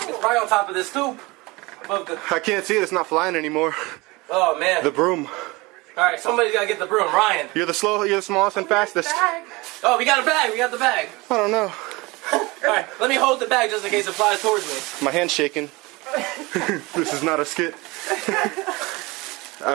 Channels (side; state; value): left; quieter; 23.4 dB